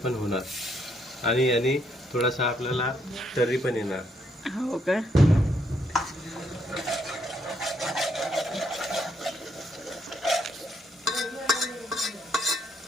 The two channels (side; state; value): both; normal; correlation 0.73